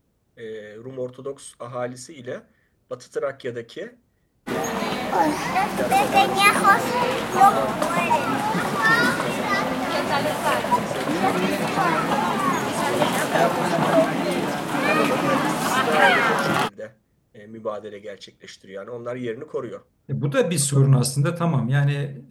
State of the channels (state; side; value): identical; both; correlation 1.00